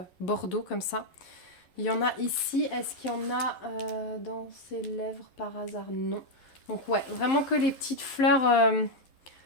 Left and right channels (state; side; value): late; right; 11 ms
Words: bordeaux comme ça. Il y en a ici, est-ce qu'il y en a dans ses lèvres par hasard? Non. Donc ouais, vraiment que les petites fleurs,